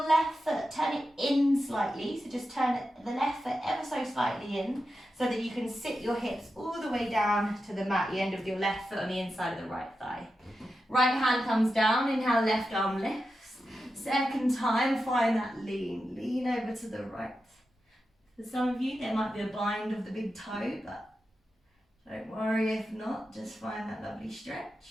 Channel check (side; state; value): both; normal; correlation 0.90